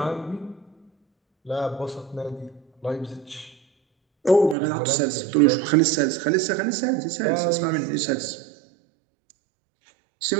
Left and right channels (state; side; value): drops out; left; at 4.5 s